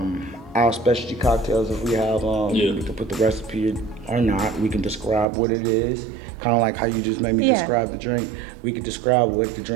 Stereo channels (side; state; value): left; drops out; at 5.2 s